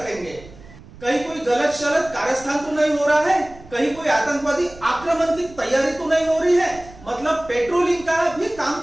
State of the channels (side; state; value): right; noise; rumble, 20 dB below the sound